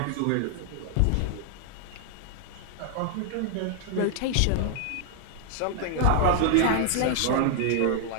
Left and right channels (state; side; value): different; both; correlation 0.00